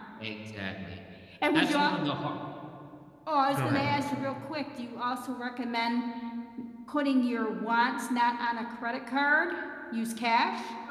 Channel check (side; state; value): both; identical; correlation 1.00